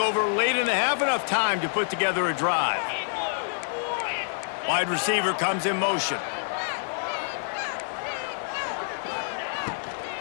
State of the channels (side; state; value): right; silent; digital silence